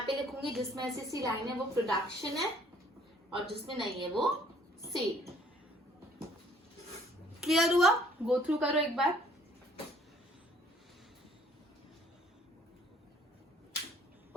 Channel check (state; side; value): normal; both; correlation 0.60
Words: पे लिखूंगी जिसमें ऐसी लाइन है वो प्रोडक्शन है और जिसमें नहीं है वो सेल। क्लियर हुआ? गो थ्रू करो एक बार।